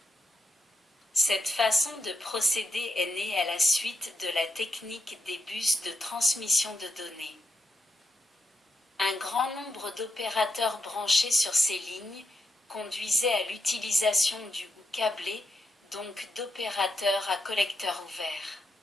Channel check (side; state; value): both; normal; correlation 0.82